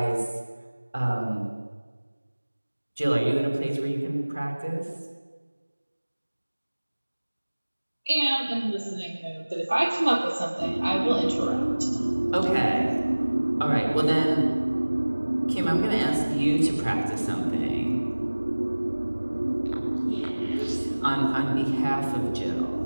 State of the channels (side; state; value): both; inverted; correlation -1.00